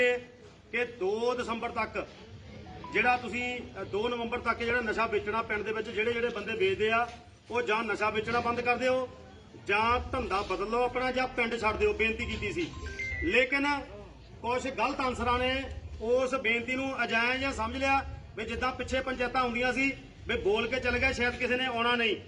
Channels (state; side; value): identical; both; correlation 1.00